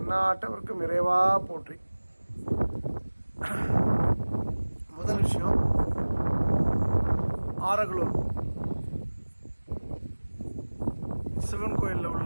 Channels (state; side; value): inverted; both; correlation -1.00